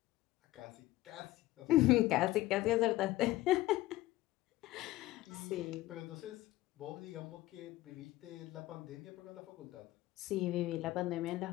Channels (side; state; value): right; quieter; 17.1 dB